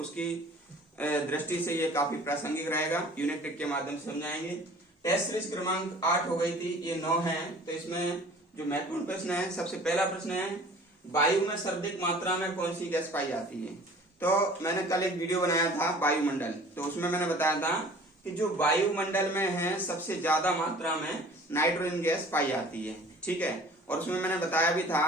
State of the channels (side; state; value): both; normal; correlation 0.47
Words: दृष्टि से ये काफी प्रासंगिक रहेगा। यूनिट टेक के माध्यम से समझाएंगे। टेस्ट सीरीज क्रमांक 8 हो गई थी, ये 9 है। तो इसमें जो महत्वपूर्ण प्रश्न है, सबसे पहला प्रश्न है वायु में सर्वाधिक मात्रा में कौन सी गैस पाई जाती है। तो मैंने कल एक वीडियो बनाया था वायुमंडल, तो उसमें मैंने बताया था कि जो वायुमंडल में है सबसे ज्यादा मात्रा में नाइट्रोजन गैस पाई जाती है, ठीक है। और उसमें मैंने बताया भी था